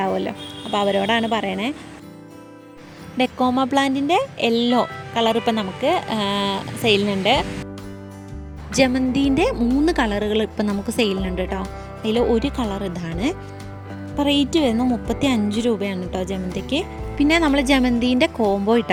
അപ്പോൾ അവരോടാണ് പറയണേ. ഡെക്കോമ പ്ലാന്റിൻ്റെ യെല്ലോ കളർ ഇപ്പം നമുക്ക് സെയിലിനുണ്ട്. ജമന്തിൻ്റെ 3 കളറുകൾ ഇപ്പം നമുക്ക് സെയിലിനുണ്ട് കേട്ടോ. അതിൽ ഒരു കളർ ഇതാണ്. ഇപ്പോൾ റേറ്റ് വരുന്നത് 35 രൂപയാണ് കേട്ടോ ജമന്തിക്ക്. പിന്നെ നമ്മൾ ജമന്തിൻ്റെ കോംബോ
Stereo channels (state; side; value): identical; both; correlation 1.00